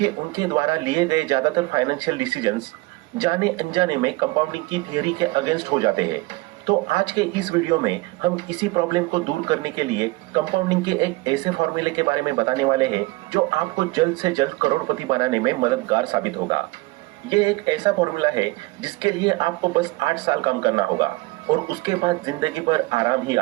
उनके द्वारा लिए गए ज्यादातर फाइनेंशियल डिसीजंस जाने अनजाने में कंपाउंडिंग की थियरी के अगेंस्ट हो जाते हैं। तो आज के इस वीडियो में हम इसी प्रॉब्लम को दूर करने के लिए कंपाउंडिंग के एक ऐसे फॉर्मूले के बारे में बताने वाले हैं जो आपको जल्द से जल्द करोड़पति बनाने में मददगार साबित होगा। ये एक ऐसा फॉर्मूला है जिसके लिए आपको बस 8 साल काम करना होगा और उसके बाद जिंदगी भर आराम ही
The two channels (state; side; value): quieter; left; 21.9 dB